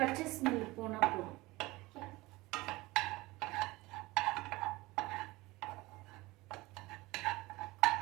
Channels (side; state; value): left; quieter; 20.9 dB